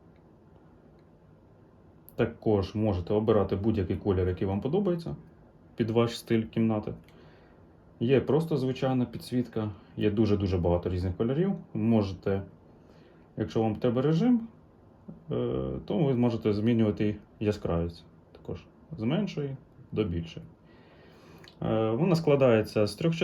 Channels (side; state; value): both; identical; correlation 1.00